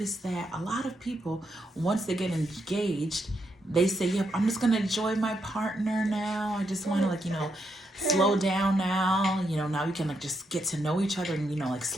that a lot of people, once they get engaged, they say, yep, I'm just gonna enjoy my partner now. I just want to slow down now. Now we can just get to know each other and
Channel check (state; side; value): normal; both; correlation 0.80